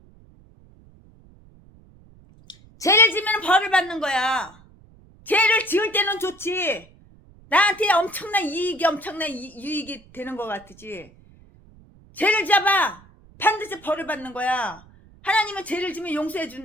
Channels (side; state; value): right; noise; rumble, 26 dB below the sound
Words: 죄를 지면 벌을 받는 거야. 죄를 지을 때는 좋지. 나한테 엄청난 유익이 되는 것 같지. 죄를 잡아 반드시 벌을 받는 거야. 하나님은 죄를 지면 용서해